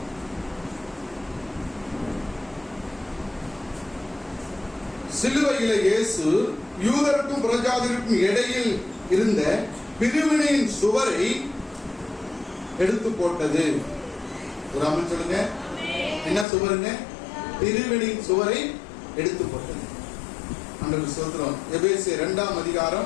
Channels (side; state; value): right; drops out; at 16.4 s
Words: சிலுவையில இயேசு யூதருக்கும் புறஜாதிக்கும் இடையில் இருந்த பிரிவினையின் சுவரை எடுத்து போட்டது. ஒரு அமன் சொல்லுங்க. என்ன சுவருங்க? பிரிவினையின் சுவரை எடுத்து போட்டது. ஆண்டவருக்கு ஸ்தோத்திரம். எபேசியர் 2ஆம்